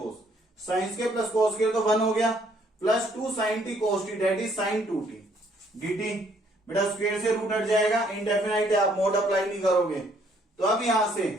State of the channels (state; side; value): normal; both; correlation 0.65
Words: sine square plus cos square तो 1 हो गया, plus 2 sine t cos t that is sine 2t dt, बेटा square से root हट जाएगा, indefinite है, आप मोड अप्लाई नहीं करोगे। तो अब यहां से